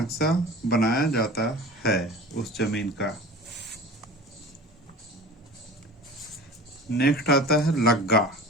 बनाया जाता है उस जमीन का। नेक्स्ट आता है लग्गा।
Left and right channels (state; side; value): normal; both; correlation 0.39